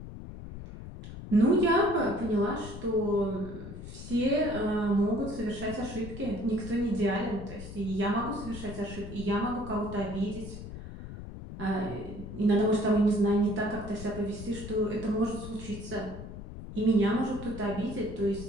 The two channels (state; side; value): noise; left; rumble, 11 dB below the sound